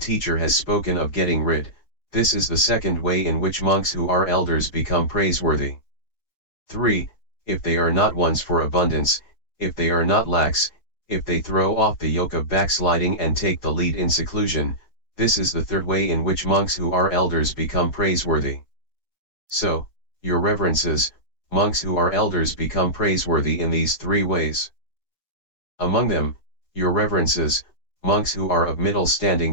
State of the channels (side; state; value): right; late; 4.7 ms